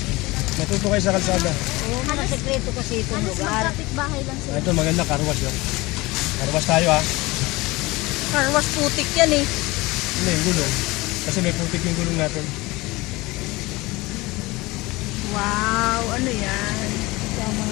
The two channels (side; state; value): right; quieter; 21.7 dB